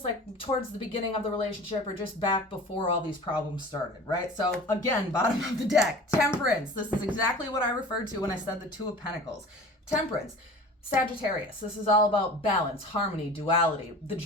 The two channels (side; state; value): both; normal; correlation 0.40